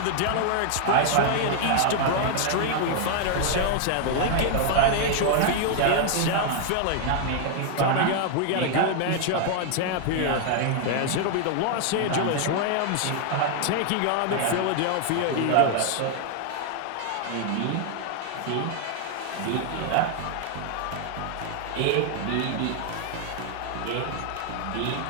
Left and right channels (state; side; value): different; both; correlation 0.00